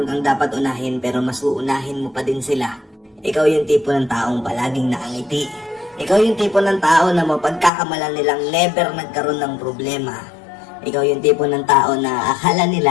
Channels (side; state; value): right; drops out; at 7.7 s